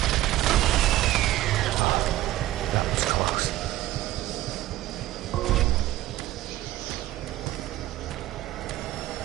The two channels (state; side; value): quieter; left; 15.5 dB